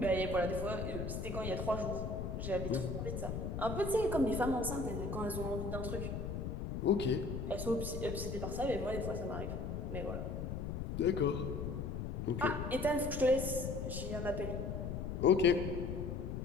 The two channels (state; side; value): noise; left; rumble, 4 dB below the sound